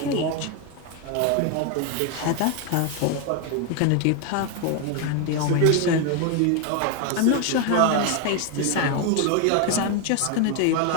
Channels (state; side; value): different; both; correlation 0.01